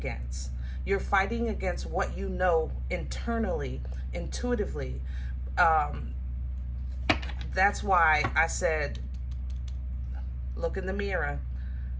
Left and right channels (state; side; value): identical; both; correlation 1.00